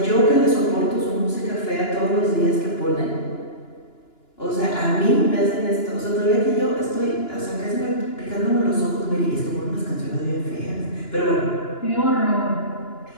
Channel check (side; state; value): right; late; 2.9 ms